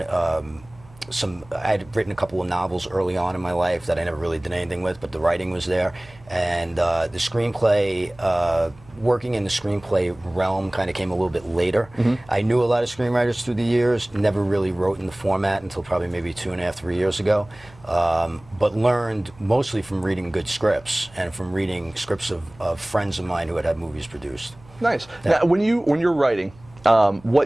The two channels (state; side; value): noise; right; hum, 24 dB below the sound